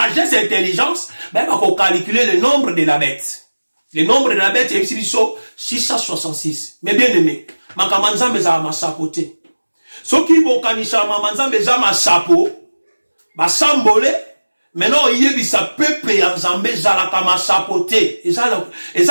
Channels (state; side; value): inverted; both; correlation -1.00